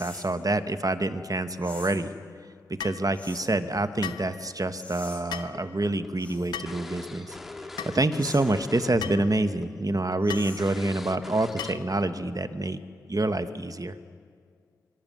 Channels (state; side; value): normal; both; correlation 0.76